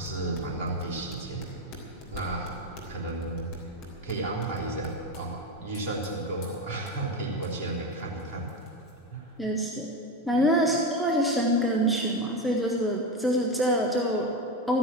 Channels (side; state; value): both; normal; correlation 0.16